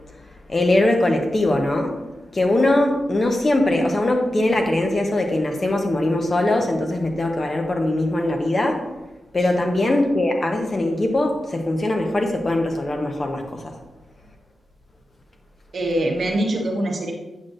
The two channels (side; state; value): both; normal; correlation 0.92